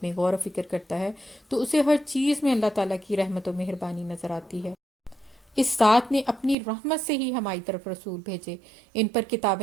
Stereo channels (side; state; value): left; drops out; at 6.6 s